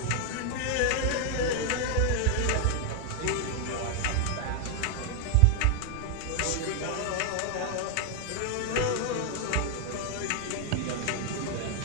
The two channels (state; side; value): different; both; correlation 0.00